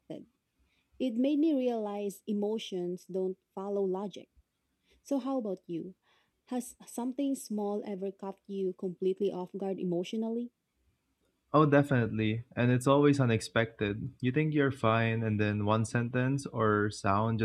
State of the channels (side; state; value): both; identical; correlation 1.00